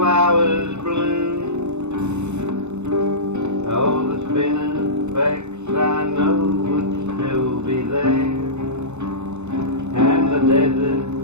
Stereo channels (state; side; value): late; left; 0.82 ms